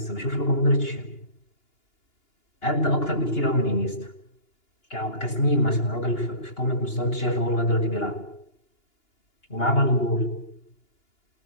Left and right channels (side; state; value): right; late; 2.9 ms